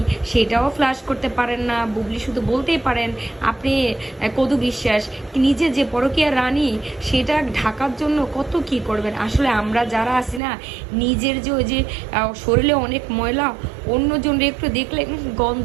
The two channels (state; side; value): drops out; left; at 10.4 s